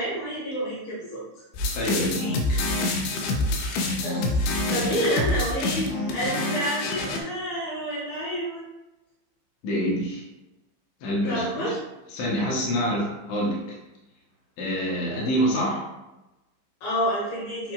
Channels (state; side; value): late; right; 15 ms